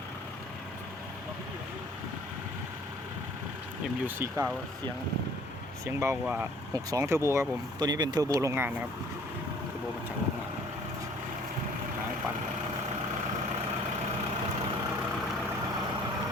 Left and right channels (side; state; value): both; normal; correlation 0.54